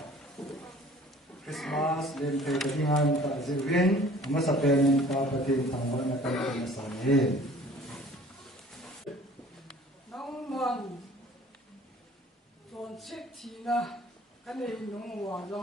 Christmas len te dingan ta zirwin masapen ta patin tangwa na ta na sani nang man ton sik thina kanei nong wa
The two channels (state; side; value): normal; both; correlation 0.50